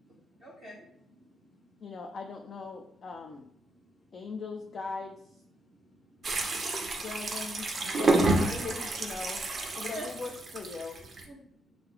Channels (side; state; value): both; normal; correlation 0.80